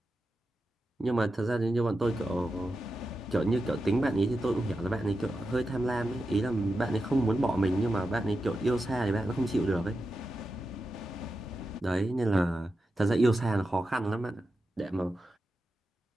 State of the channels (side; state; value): both; normal; correlation 0.90